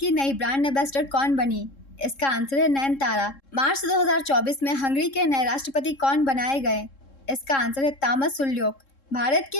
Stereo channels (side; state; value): right; late; 3.7 ms